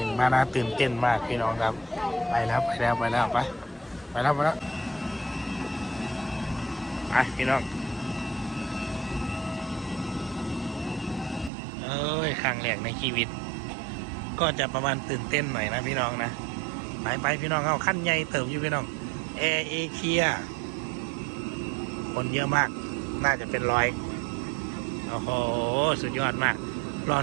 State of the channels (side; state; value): left; drops out; at 11.5 s